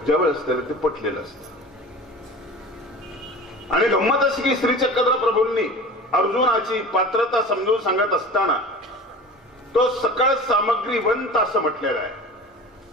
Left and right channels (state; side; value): normal; both; correlation 0.37